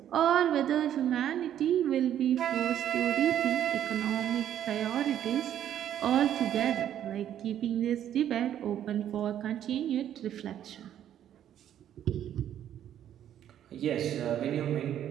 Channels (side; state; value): left; quieter; 10.6 dB